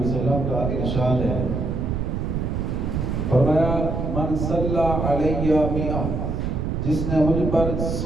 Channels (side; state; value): right; noise; rumble, 1 dB below the sound